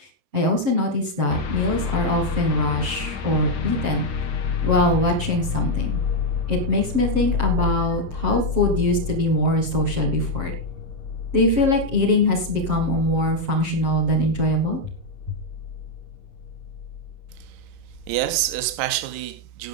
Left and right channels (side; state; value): left; late; 7.5 ms